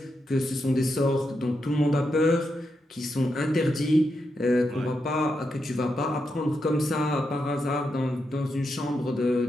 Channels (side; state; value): both; normal; correlation 0.84